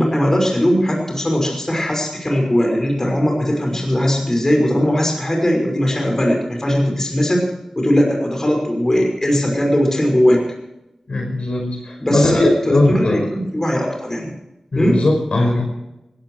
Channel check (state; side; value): normal; both; correlation 0.96